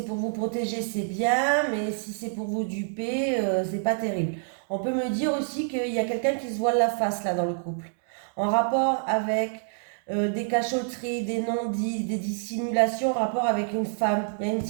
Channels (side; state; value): left; silent; digital silence